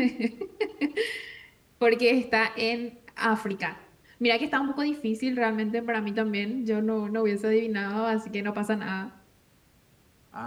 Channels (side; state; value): both; identical; correlation 1.00